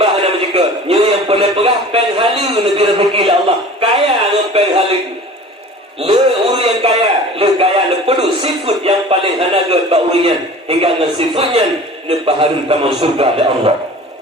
hana menjeka. Nyo yang boleh pegah pen hala lebih rezeki oleh Allah. Kaya dengan pen hala. Le uru yang kaya, le kaya le pedu sifat yang paling hanaga ba urian hingga dengan sifatnya ne baharu taman surga oleh Allah.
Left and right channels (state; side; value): normal; both; correlation 0.41